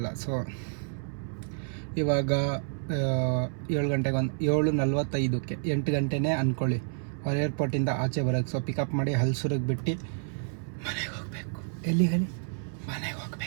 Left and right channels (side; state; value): left; silent; 58 dB below the other